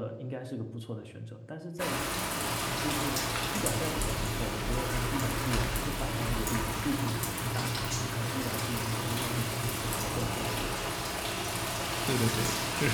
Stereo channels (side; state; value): both; identical; correlation 1.00